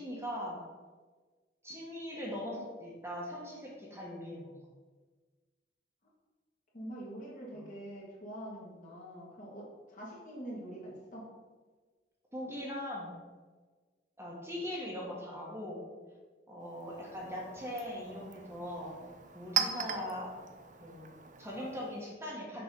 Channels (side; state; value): both; normal; correlation 0.25